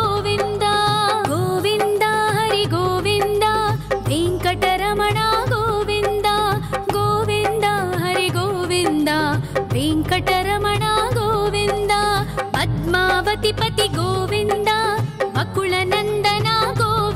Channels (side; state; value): both; identical; correlation 1.00